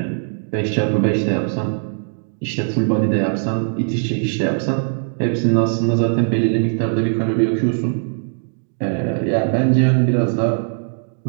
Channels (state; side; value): silent; left; digital silence